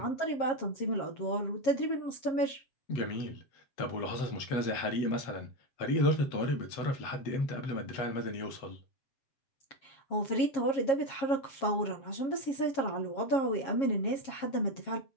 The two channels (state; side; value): late; right; 7.4 ms